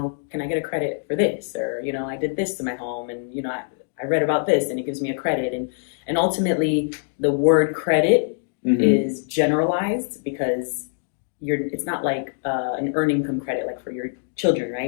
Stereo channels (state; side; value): silent; right; digital silence